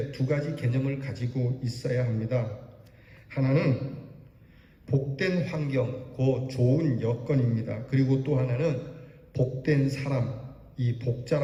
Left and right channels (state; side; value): identical; both; correlation 1.00